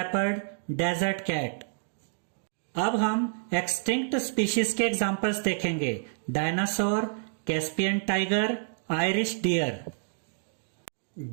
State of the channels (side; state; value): left; silent; digital silence